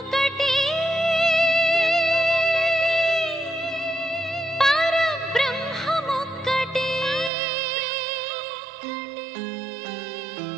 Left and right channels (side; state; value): left; drops out; at 7.3 s